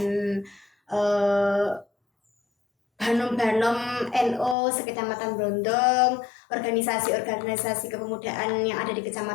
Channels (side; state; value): right; drops out; at 4.5 s